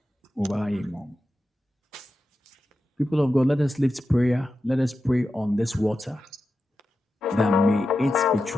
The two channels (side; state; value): both; normal; correlation 0.91